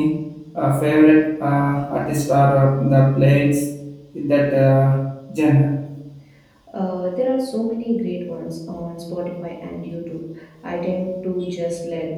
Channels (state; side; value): identical; both; correlation 1.00